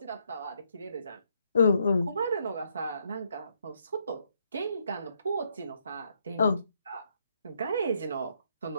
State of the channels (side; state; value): both; inverted; correlation -0.74